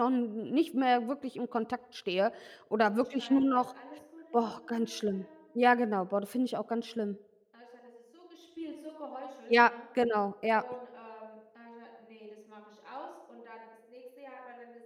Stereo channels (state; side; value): identical; both; correlation 1.00